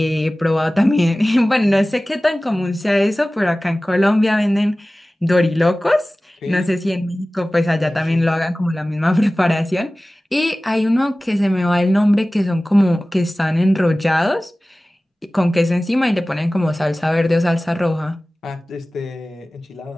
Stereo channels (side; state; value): both; normal; correlation 0.97